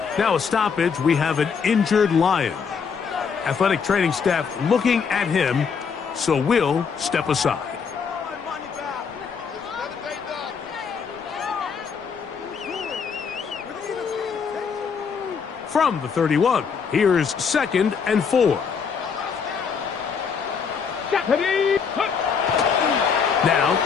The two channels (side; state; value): right; quieter; 6.1 dB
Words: Now a stoppage, we have an injured Lion. Athletic training staff looking at him, so we'll step aside. From the 31, here's second and 4. Now,